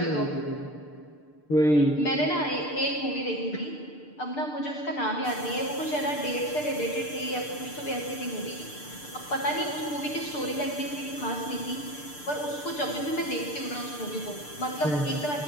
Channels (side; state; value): right; late; 6.7 ms